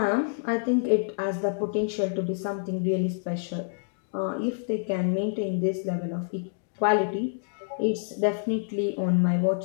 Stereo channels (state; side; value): silent; right; digital silence